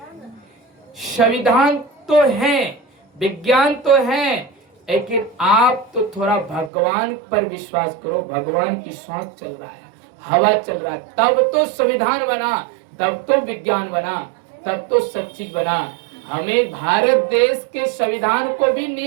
संविधान तो है, विज्ञान तो है, लेकिन आप तो थोड़ा भगवान पर विश्वास करो। भगवान की सांस चल रहा है, हवा चल रहा है, तब तो संविधान बना, तब तो विज्ञान बना, तब तो सब चीज बना। हमें भारत देश के संविधान को भी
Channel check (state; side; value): drops out; left; at 6.7 s